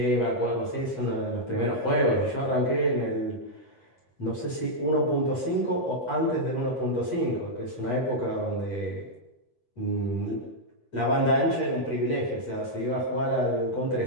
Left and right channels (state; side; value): late; right; 13 ms